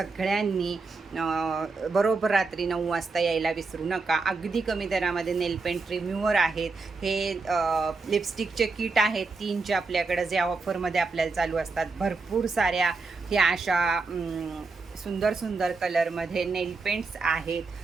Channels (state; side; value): quieter; left; 4.1 dB